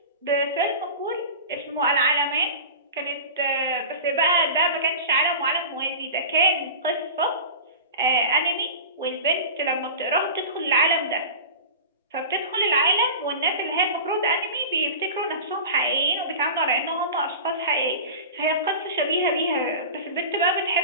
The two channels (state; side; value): inverted; both; correlation -0.32